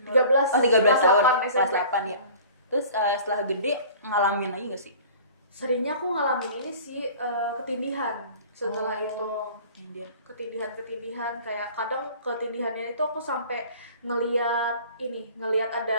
13 tahun 8 kelas SMP. 8 ya. Terus setelah gede ngalamin lagi gak sih? Seringnya aku ngalamin ini sih ketindihan setelah itu. Ketindihan kayak kadang ketindihannya itu aku sampai ngelihat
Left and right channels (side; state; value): both; inverted; correlation -0.45